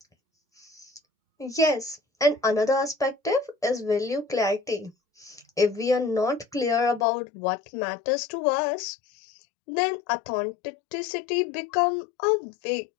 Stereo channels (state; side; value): drops out; right; at 7.1 s